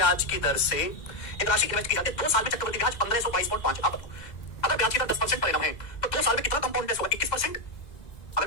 की दर से एक राशि इन्वेस्ट की जाती है 2 साल में, चक्रवृद्धि ब्याज 1522.5। आप बताओ, अगर ब्याज की दर 10% परिणाम है तो 2 साल में कितना कंपाउंड इंटरेस्ट होगा? 21%। अगर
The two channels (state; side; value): late; right; 2.0 ms